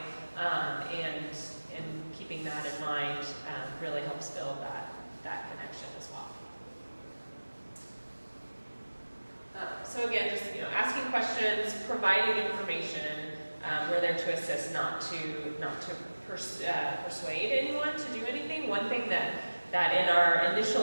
and keeping that in mind really helps build that connection as well. So again, just asking questions, providing information. We're there to assist, not to persuade anyone to do anything. One thing that in our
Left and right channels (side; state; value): both; inverted; correlation -1.00